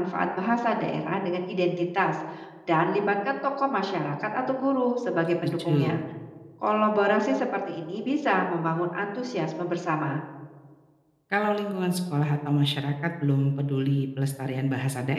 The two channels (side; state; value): both; identical; correlation 1.00